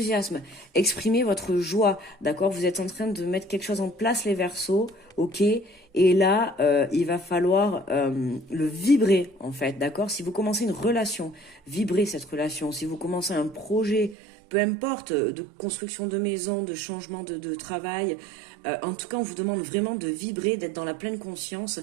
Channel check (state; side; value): drops out; left; at 14.2 s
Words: exprimez votre joie, d'accord? Vous êtes en train de mettre quelque chose en place, les Verseaux, ok? Et là, il va falloir le vibrer, en fait, d'accord? Si vous commencez une relation, vibrez cette relation. Si vous commencez un projet, peu importe, de construction de maison, de changement de travail, en tout cas, on vous demande vraiment de vibrer, d'être dans la pleine conscience